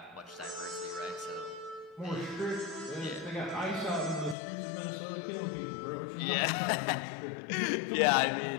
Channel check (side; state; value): right; drops out; at 4.4 s